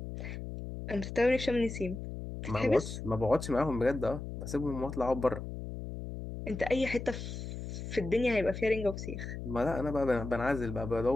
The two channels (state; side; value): noise; left; hum, 7 dB below the sound